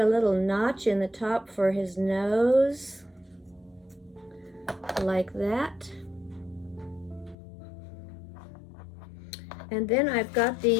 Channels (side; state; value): right; drops out; at 7.4 s